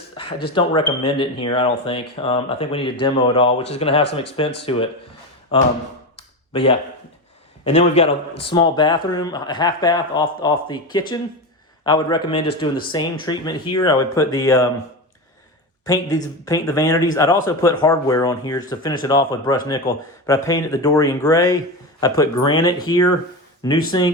I just don't recommend it in here, I don't think. I think we need to demo it all, which is going to have some expense to it. But yeah. And then we've got a small bathroom, a half bath off the kitchen. I would recommend just doing the same treatment here. I would put the paint the vanities. I'd also put hardware on here just to finish it off with brushed nickel. But I painted the Dorian gray. I put granite here, new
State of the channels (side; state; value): both; normal; correlation 0.19